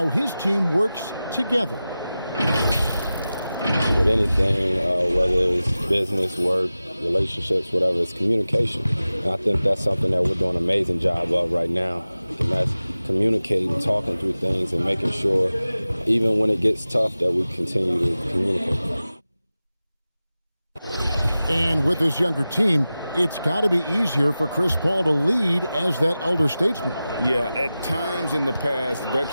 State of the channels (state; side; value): inverted; both; correlation -0.95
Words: his team works together. With anything, whether it's business, work, relationships, whatever, it's communication. And I think that's something that we're doing an amazing job of right now. And that's communicating, talking through things, and making sure, even when it gets tough, that we continue to communicate. And with this younger team, it's got to be easier for Chris Paul to lead as that elder statesman. Yeah, at times in the past,